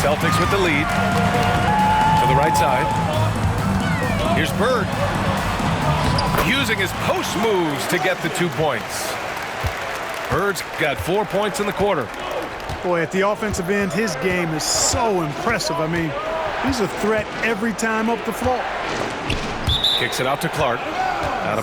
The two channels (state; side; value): identical; both; correlation 1.00